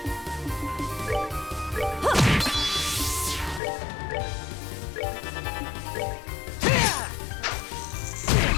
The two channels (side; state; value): right; drops out; at 3.6 s